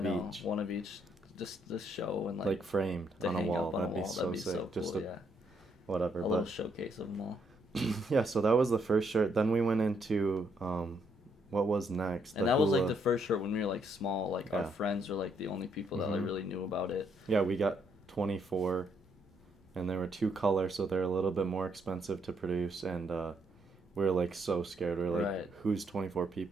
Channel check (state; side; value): normal; both; correlation 0.73